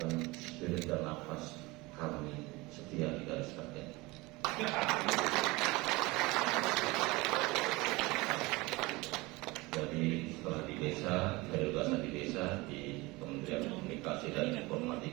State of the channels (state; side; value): quieter; left; 22.7 dB